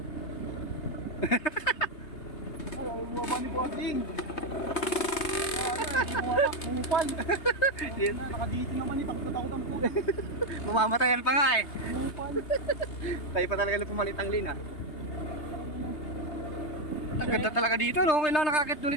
Ay, bumaba ni Bossing. Bumupal. Nakadito naman eh, takot-takotan po. Mamamatayan pa nga eh. Bumupal. Tayo pa talaga na pumalit ang lina. Ang ganda talaga dito, no? Kailangan nakakit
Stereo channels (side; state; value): right; late; 3.3 ms